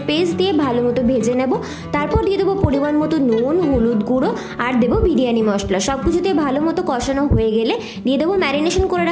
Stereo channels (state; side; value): identical; both; correlation 1.00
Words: পেস্ট দিয়ে ভালো মতো ভেজে নেব। তারপর দিয়ে দেবো পরিমাণ মতো নুন, হলুদ গুঁড়ো আর দেবো বিরিয়ানি মশলা। সব কিছু দিয়ে ভালো মতো কষানো হয়ে গেলে দিয়ে দেবো ম্যারিনেশন করে